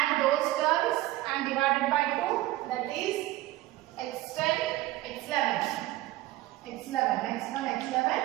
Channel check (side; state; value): left; quieter; 16.8 dB